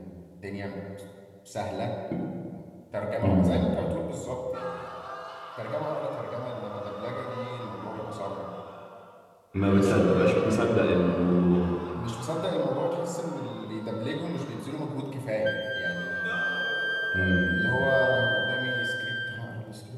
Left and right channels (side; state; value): both; identical; correlation 1.00